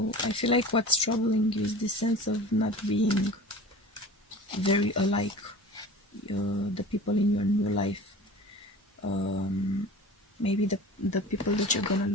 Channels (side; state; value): both; normal; correlation 0.39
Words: I feel like what's troubling you is the sense of not being very alike, the people in your new life. Maybe the people that you're gonna